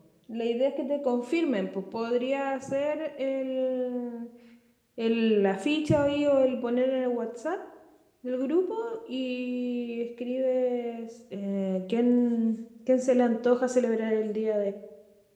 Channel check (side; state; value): both; identical; correlation 1.00